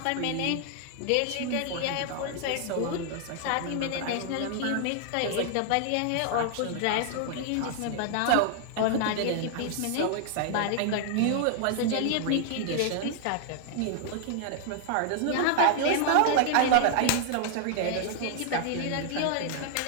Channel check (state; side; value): different; both; correlation 0.00